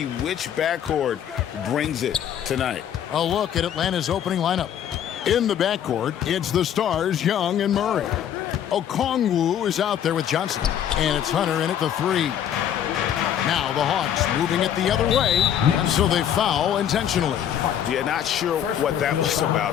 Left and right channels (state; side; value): quieter; right; 9.8 dB